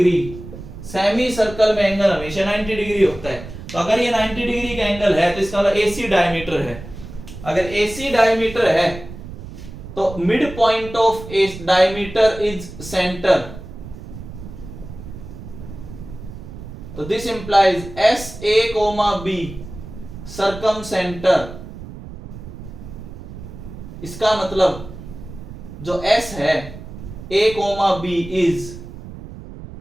semi circle में एंगल हमेशा 90 डिग्री होता है। तो अगर ये 90 डिग्री का एंगल है तो इसका मतलब AC डायमीटर है। अगर AC डायमीटर है तो mid point of diameter is centre, तो this implies SA, B circumcentre. इसका मतलब जो S है A, B is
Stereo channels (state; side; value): noise; right; rumble, 13 dB below the sound